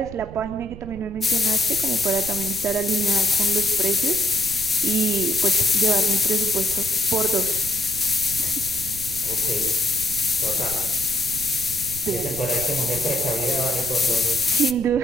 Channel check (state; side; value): noise; right; rumble, 12 dB below the sound